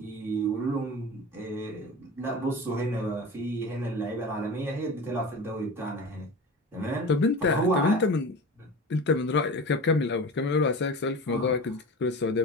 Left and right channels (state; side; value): normal; both; correlation 0.32